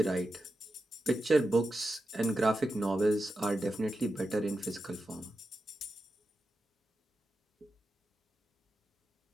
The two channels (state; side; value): normal; both; correlation 0.90